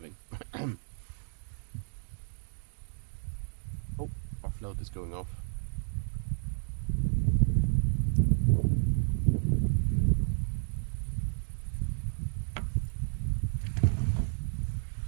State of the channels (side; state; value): left; silent; digital silence